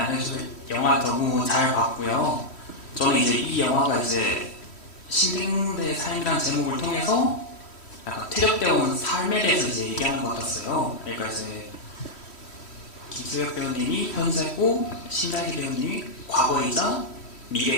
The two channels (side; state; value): right; late; 3.1 ms